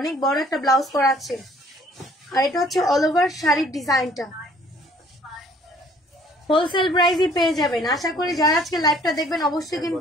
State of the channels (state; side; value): normal; both; correlation 0.58